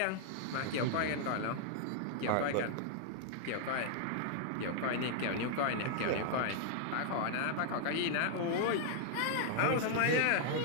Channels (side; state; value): both; different; correlation -0.01